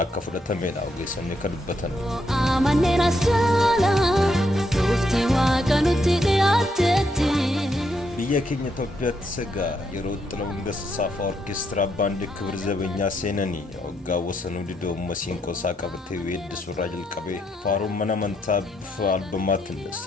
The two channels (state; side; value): normal; both; correlation 0.77